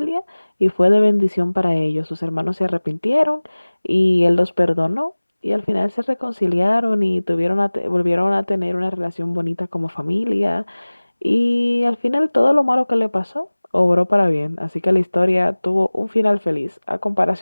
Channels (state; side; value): inverted; both; correlation -1.00